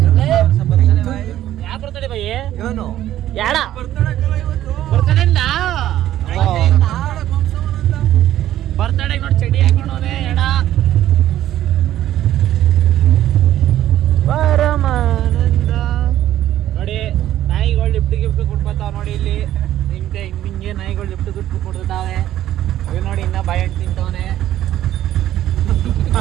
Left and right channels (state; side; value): quieter; left; 12.7 dB